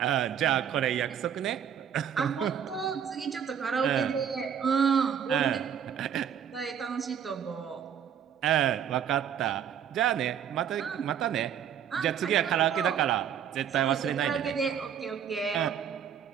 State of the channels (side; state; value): left; quieter; 8.6 dB